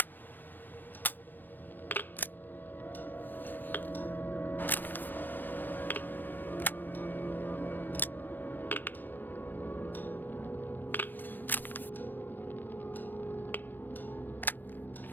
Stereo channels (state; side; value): late; right; 0.089 ms